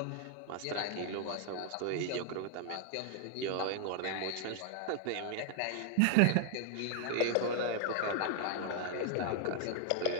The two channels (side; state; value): both; different; correlation 0.00